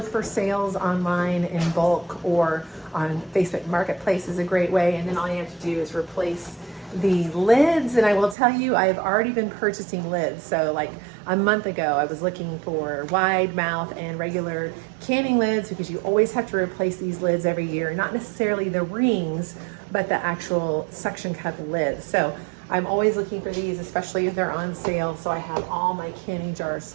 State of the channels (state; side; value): drops out; left; at 8.3 s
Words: for sales online in bulk or on Facebook Marketplace is a great way. And then all you have to do is replace the lids. And I will tell you, I've already been purchasing lids. So like a month ago, I was looking for wide mouth and regular canning lids, because you always have to replace these lids every year, not necessarily the rings, but the actual suction cup lids. So I'm always looking for these, especially if they're on sale. So I have all my canning jars